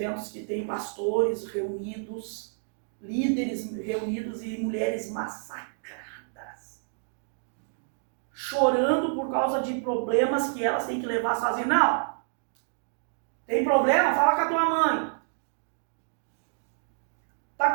que tem pastores reunidos, líderes reunidos e mulheres massacradas, chorando por causa de problemas que elas têm que levar sozinhas. Não! Tem problema? Fala com a tua mãe.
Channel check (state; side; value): silent; left; digital silence